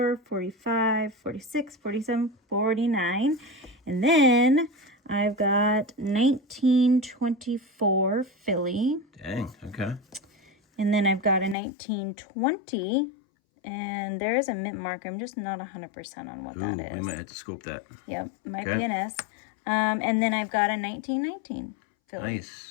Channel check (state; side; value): drops out; right; at 11.6 s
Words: 45, 46, 47, 49. And then I've got 1924 Philly. Dang, okay. And then I've got a 1920. And there is a mint mark. I'm just not 100% on what that is. We might have to scope that. Yep, might be an S. And then I've got a 1919 Philly.